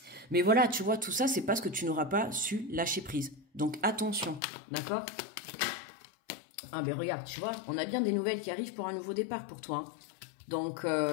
Mais voilà, tu vois, tout ça, c'est parce que tu n'auras pas su lâcher prise. Donc attention, d'accord? Ah ben regarde, tu vois, on a bien des nouvelles qui arrivent pour un nouveau départ pour toi. Hein. Donc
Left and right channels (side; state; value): right; drops out; at 4.4 s